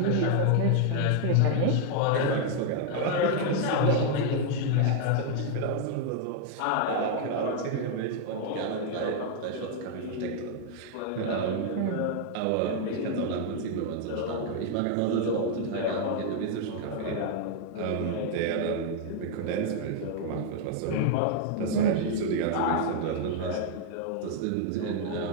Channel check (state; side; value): different; both; correlation 0.00